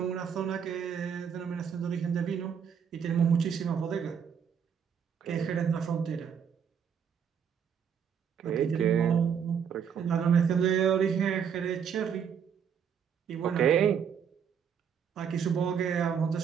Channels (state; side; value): quieter; left; 7.5 dB